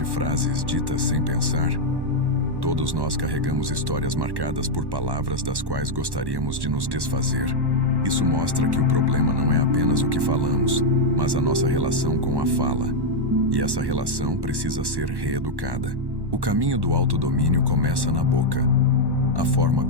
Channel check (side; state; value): left; late; 1.1 ms